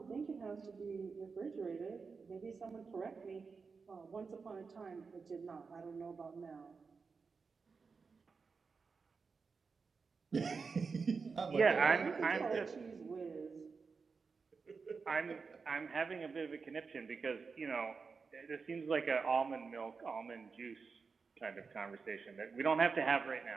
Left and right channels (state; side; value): quieter; left; 4.9 dB